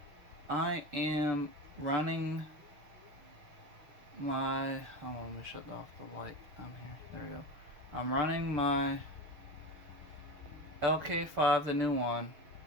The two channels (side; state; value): left; late; 6.8 ms